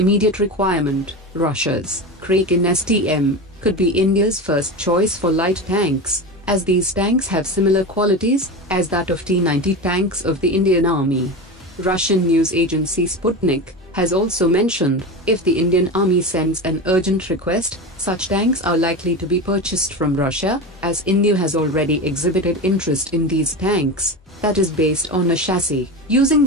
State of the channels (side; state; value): both; normal; correlation 0.24